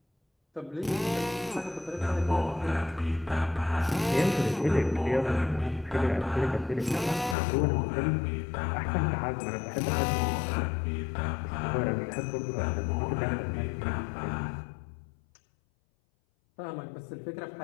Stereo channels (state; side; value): drops out; right; at 7.4 s